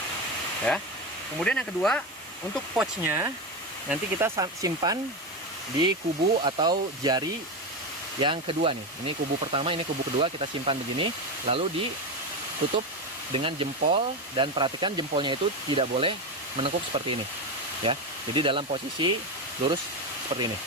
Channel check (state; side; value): normal; both; correlation 0.15